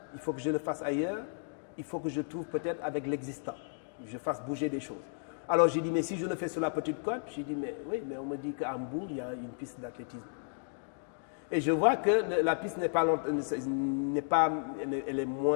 il faut que je le fasse ailleurs, il faut que je trouve peut-être avec l'existant, je fasse bouger des choses. Alors, j'ai dit, mais si je le fais sur la Petite Côte, j'ai dit, mais oui, mais on me dit qu'à Hambourg, il y a une piste d'athlétisme. Et je vois que la piste n'est pas,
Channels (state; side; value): silent; right; digital silence